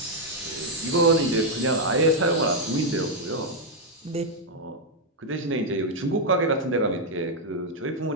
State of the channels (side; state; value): both; normal; correlation -0.01